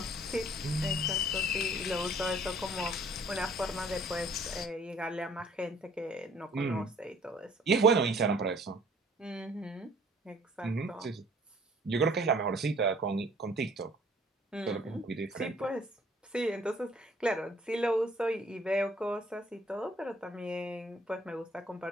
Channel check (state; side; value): normal; both; correlation 0.56